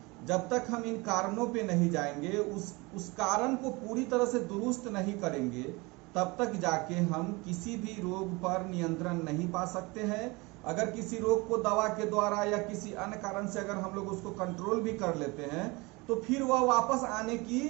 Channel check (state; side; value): quieter; left; 25.2 dB